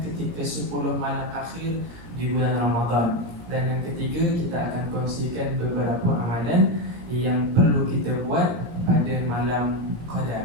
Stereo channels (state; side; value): late; left; 17 ms